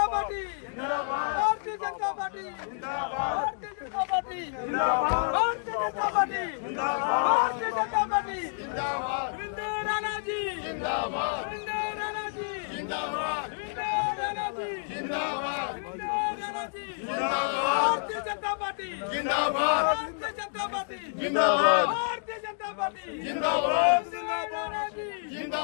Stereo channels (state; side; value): silent; right; digital silence